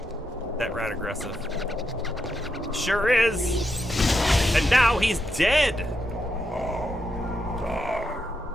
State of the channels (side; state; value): both; normal; correlation 0.83